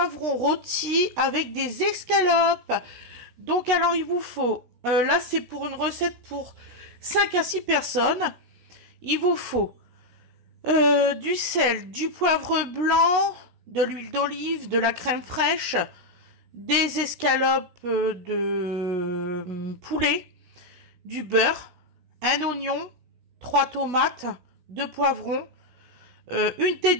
rôti avec des escalopes. Donc alors il vous faut, là c'est pour une recette pour 5 à 6 personnes. Il vous faut du sel, du poivre blanc, de l'huile d'olive, de la crème fraîche, des escalopes de poulet, du beurre, un oignon, 3 tomates, 2 poivrons, une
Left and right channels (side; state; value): left; late; 16 ms